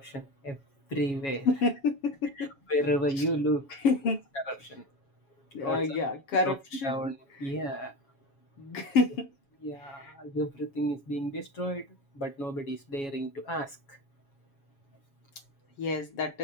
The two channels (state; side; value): late; right; 7.2 ms